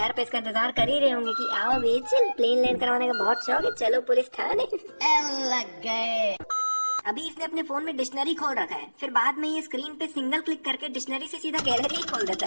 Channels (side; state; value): both; inverted; correlation -1.00